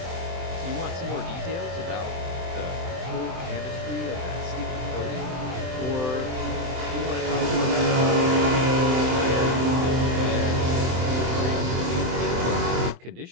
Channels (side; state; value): left; late; 23 ms